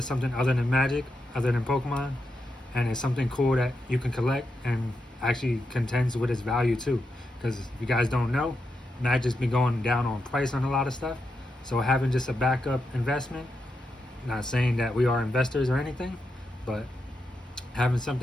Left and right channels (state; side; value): normal; both; correlation 0.86